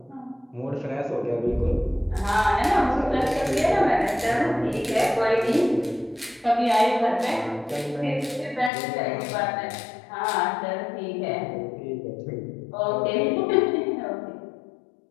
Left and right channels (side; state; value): right; drops out; at 8.7 s